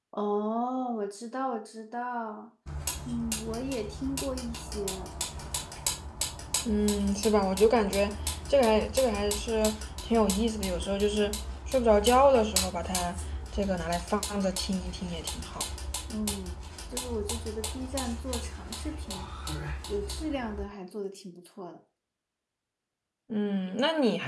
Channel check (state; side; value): identical; both; correlation 1.00